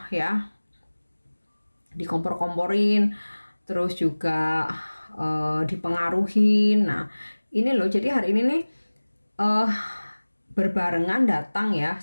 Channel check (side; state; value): both; inverted; correlation -1.00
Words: ya, dikompor-komporin, terus juga dipengaruhin. Nah ini loh, jadi hari ini nih berbarengan datang ya